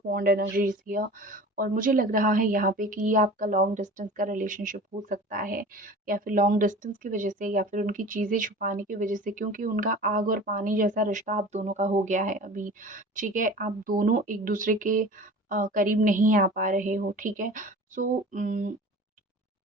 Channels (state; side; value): normal; both; correlation 0.39